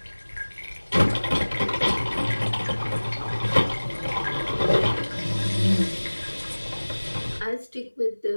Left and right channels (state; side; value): inverted; both; correlation -1.00